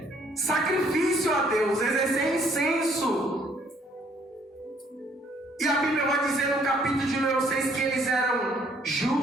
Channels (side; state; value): both; normal; correlation 0.64